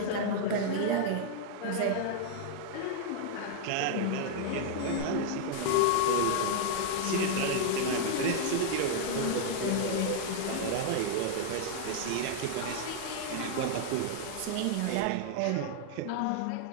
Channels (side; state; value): both; different; correlation -0.01